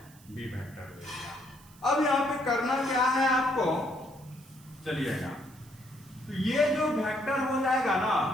बी वेक्टर ले लिया। अब यहाँ पे करना क्या है आपको, चलिएगा, तो ये जो वेक्टर हो जाएगा ना,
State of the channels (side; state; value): right; noise; hiss, 25 dB below the sound